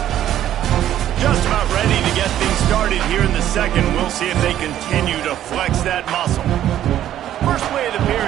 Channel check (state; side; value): quieter; left; 11.8 dB